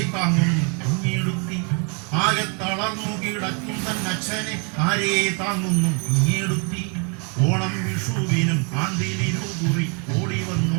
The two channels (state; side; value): quieter; left; 36.5 dB